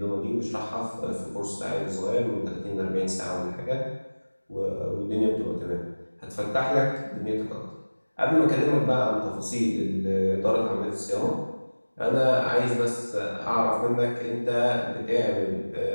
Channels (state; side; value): inverted; both; correlation -1.00